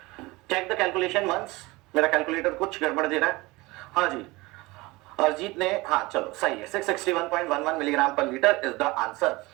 चेक द कैलकुलेशन वंस। मेरा कैलकुलेटर कुछ गड़बड़ दे रहा है। हाँ जी, अरजीत ने, हाँ चलो सही है, 661.11 milligram per litre is the answer.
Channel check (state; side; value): quieter; left; 22.2 dB